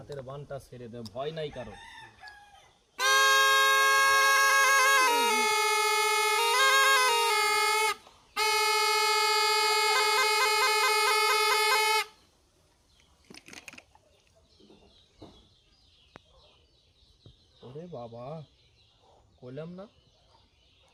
বানটা ছেড়ে দে, ভয় নাই কারো। ওরে বাবা, কইলাম না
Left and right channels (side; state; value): both; identical; correlation 1.00